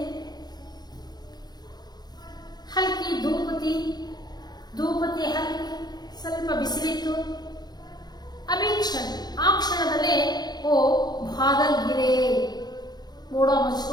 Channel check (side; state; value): right; late; 0.20 ms